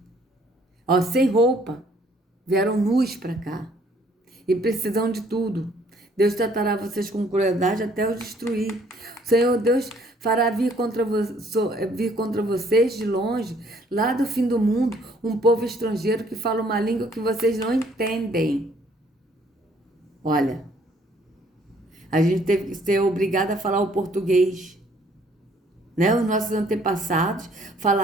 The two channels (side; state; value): both; normal; correlation 0.62